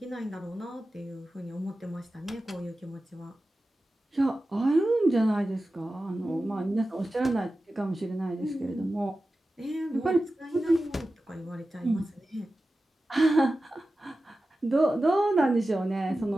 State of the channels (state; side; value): normal; both; correlation 0.94